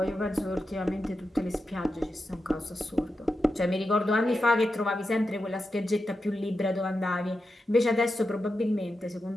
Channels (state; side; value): normal; both; correlation 0.89